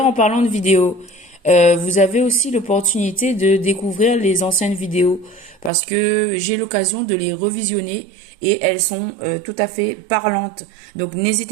en parlant de vidéos, vous avez aussi l'opportunité de découvrir les anciennes vidéos parce que j'ai l'occasion de les revisionner et elles sont tout à fait parlantes. Donc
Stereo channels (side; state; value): left; drops out; at 5.7 s